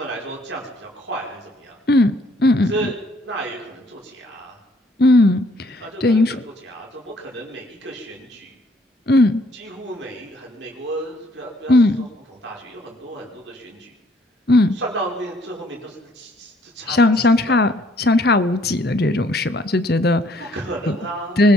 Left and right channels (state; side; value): normal; both; correlation 0.64